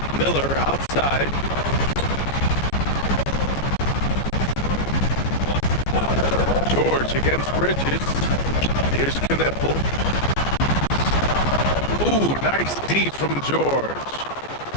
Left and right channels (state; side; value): late; right; 14 ms